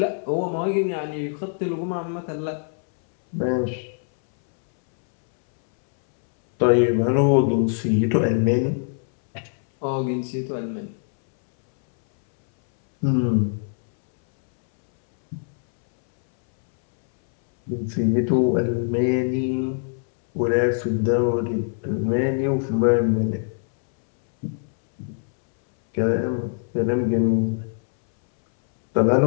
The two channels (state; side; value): silent; right; 64 dB below the other